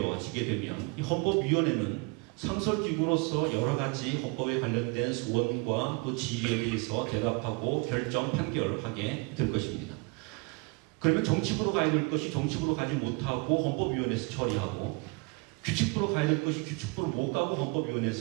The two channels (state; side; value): quieter; left; 30.5 dB